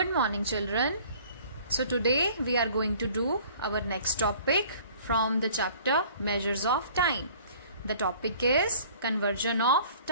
morning, children. So today we are going to do our next topic from the chapter Measures of Time. The topic is conversion of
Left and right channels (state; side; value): inverted; both; correlation -0.51